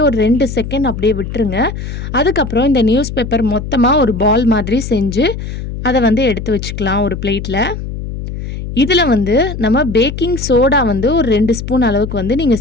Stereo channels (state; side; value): noise; left; hum, 7 dB below the sound